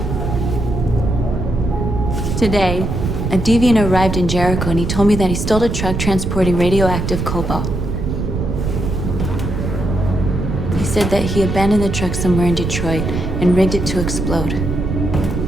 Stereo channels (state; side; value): noise; right; rumble, 3 dB below the sound